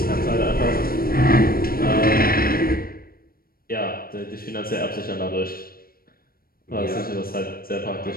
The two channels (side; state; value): right; late; 0.43 ms